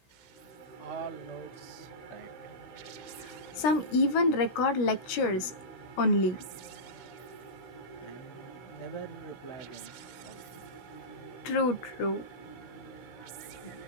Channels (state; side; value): late; right; 16 ms